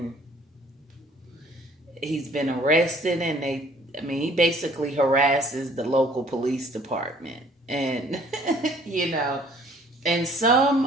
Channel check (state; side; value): normal; both; correlation 0.57